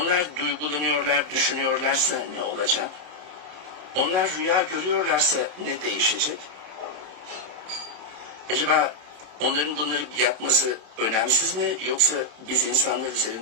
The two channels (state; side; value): late; left; 27 ms